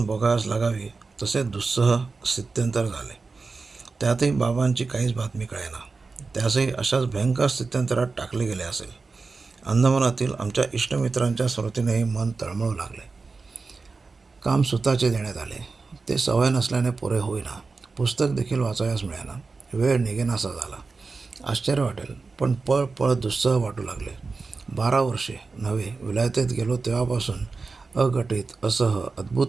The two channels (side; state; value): left; quieter; 4.2 dB